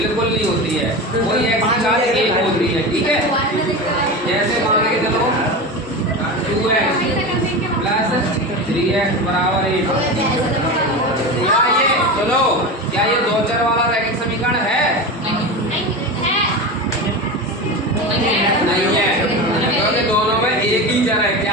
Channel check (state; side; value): normal; both; correlation 0.24